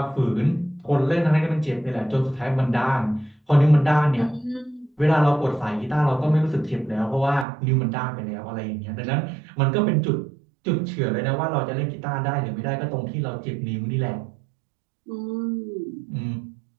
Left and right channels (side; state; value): left; drops out; at 7.5 s